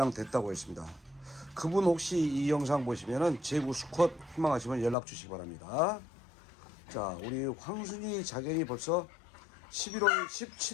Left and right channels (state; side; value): drops out; right; at 5.0 s